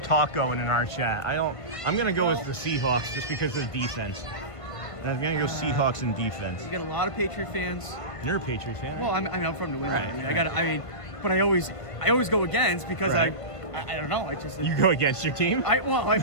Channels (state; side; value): late; right; 1.5 ms